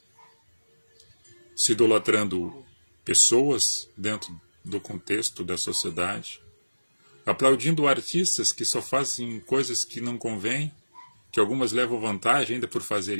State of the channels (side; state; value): both; inverted; correlation -1.00